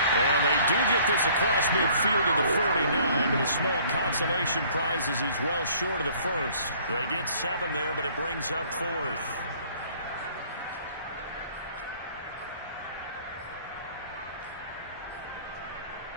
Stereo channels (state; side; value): inverted; both; correlation -0.56